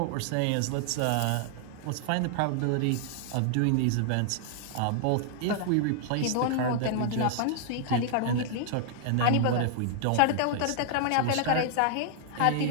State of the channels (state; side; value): different; both; correlation -0.01